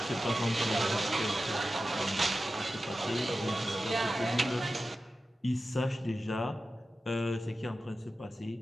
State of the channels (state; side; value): normal; both; correlation 0.93